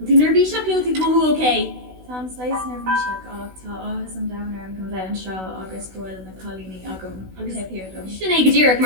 To nervy seo Clió to go okay. Tom slice nervishak tá áhas an downer an go bheith an seo agus goil na colíní agam agus hepéir dom. Sinné go dtíreach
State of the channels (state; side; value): late; left; 16 ms